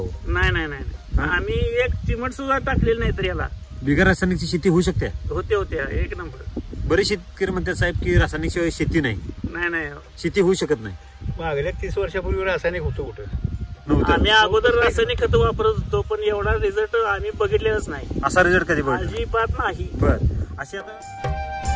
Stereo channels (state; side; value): identical; both; correlation 1.00